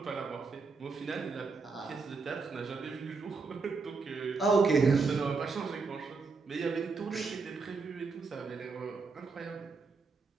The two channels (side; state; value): left; quieter; 4.5 dB